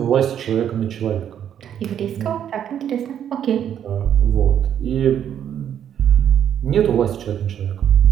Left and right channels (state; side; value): quieter; left; 9.5 dB